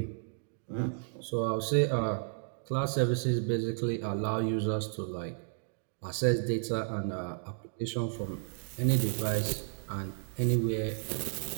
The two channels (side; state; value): left; silent; digital silence